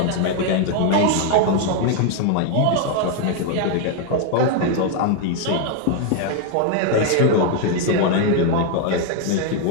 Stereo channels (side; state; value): both; different; correlation 0.01